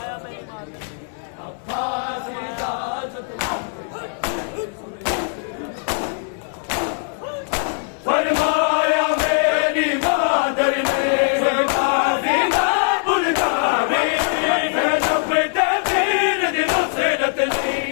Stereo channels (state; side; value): silent; right; 58 dB below the other